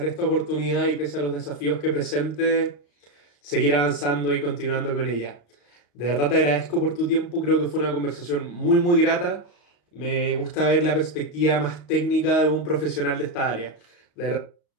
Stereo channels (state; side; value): late; right; 35 ms